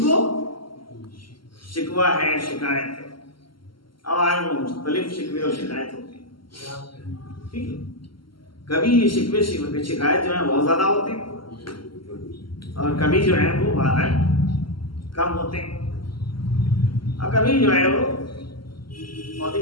شکوہ ہے، شکایت ہے، اور مختلف شکوے اور شکایت ہوتے ہیں، ٹھیک ہے۔ کبھی یہ شکوے شکایت جو ہے بہت زیادہ ہوتے ہیں، اور کبھی جو ہے وہ بہت کم ہوتے ہیں، اور کبھی جو ہے وہ بہت ہی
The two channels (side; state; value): right; late; 0.73 ms